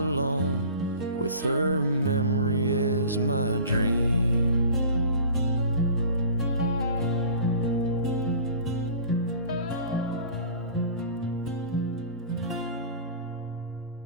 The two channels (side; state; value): both; inverted; correlation -0.42